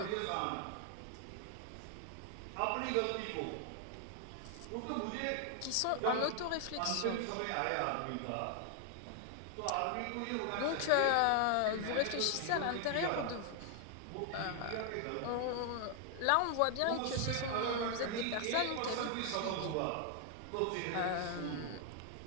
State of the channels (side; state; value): both; different; correlation 0.00